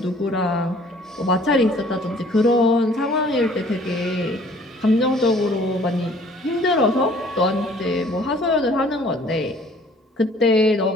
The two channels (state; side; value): normal; both; correlation 0.55